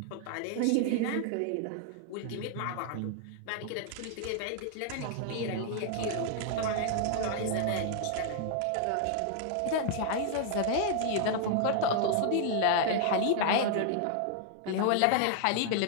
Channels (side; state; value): both; different; correlation 0.00